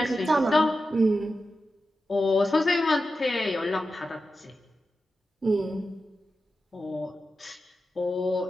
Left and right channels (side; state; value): both; normal; correlation 0.91